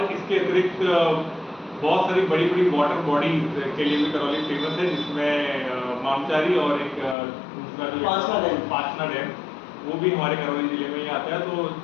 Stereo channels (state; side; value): drops out; right; at 7.2 s